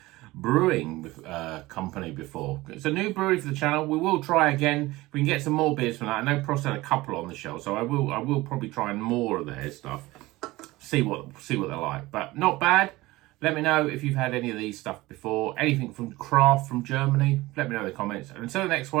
Brewing Company before. It's a new brewery for the channel. We will try again. If we can get some more beers from that. I know Prost had a couple on the shelf, so I will probably try more of their stuff. See what they're like. But not bad. Let me know if you've had any of these stuff before. Anything from craft from Germany. Let me know in the comments. And until the next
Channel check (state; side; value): quieter; left; 19.5 dB